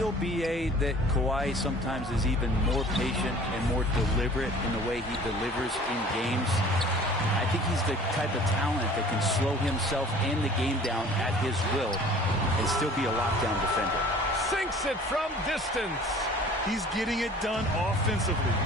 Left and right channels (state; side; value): normal; both; correlation 0.48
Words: BA, that Kawhi sometimes is even more patient and more deliberate in the way he delivers in games? I think he's the type of talent that can slow himself and the game down at his will and still be a lockdown defender. Sinks it from distance. He's getting it done offensively,